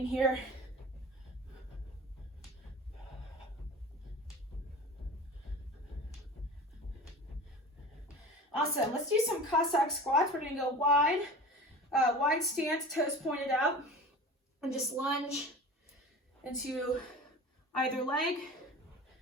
here. Awesome. Let's do some Cossack squats. We're going to go wide. Wide stance, toes pointed out, and just lunge into either leg.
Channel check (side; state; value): both; normal; correlation 0.36